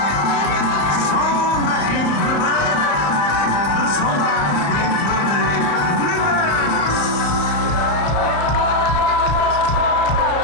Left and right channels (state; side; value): late; right; 35 ms